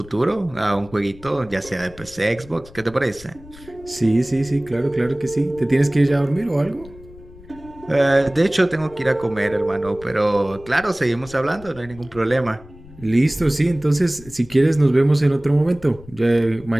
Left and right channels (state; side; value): noise; left; rumble, 20 dB below the sound